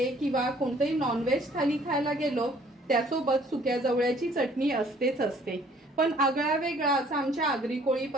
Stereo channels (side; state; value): both; normal; correlation 0.58